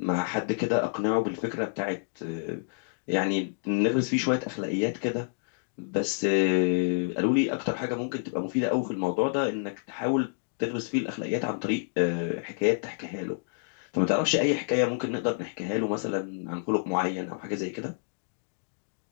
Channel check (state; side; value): silent; right; digital silence